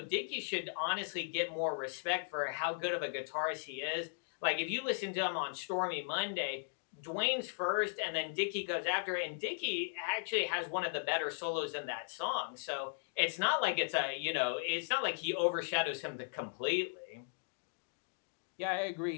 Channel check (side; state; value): right; silent; digital silence